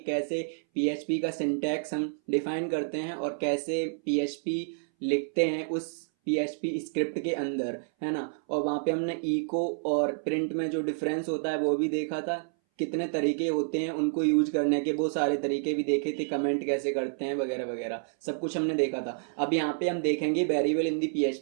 कैसे PHP का सिंटैक्स हम डिफाइन करते हैं और कैसे PHP लिखते हैं उस PHP स्क्रिप्ट के अंदर, है ना। और वहाँ पे हमने इको और प्रिंट में जो डिफरेंस होता है वो भी देखा था, कितने तरीके होते हैं उनको यूज करने के, वो सारे तरीके भी देखे थे, कमेंट कैसे करते हैं वगैरह वगैरह सब कुछ हमने देखा था। अब यहाँ पे हम देखेंगे वेरिएबल इन दी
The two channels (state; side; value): silent; left; 58 dB below the other